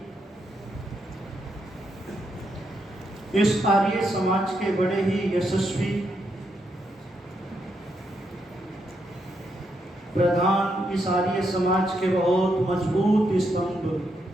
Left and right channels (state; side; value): normal; both; correlation 0.80